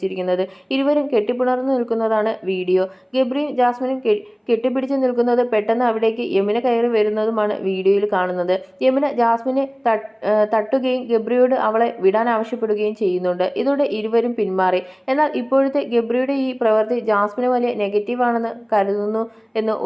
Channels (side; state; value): both; identical; correlation 1.00